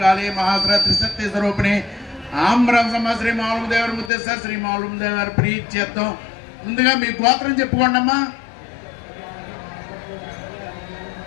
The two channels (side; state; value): right; drops out; at 4.1 s